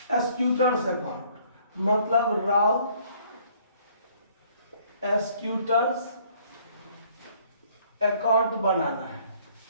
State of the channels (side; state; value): both; inverted; correlation -0.60